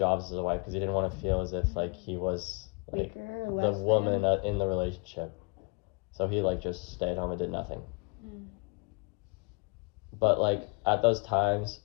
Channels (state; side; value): quieter; right; 33.6 dB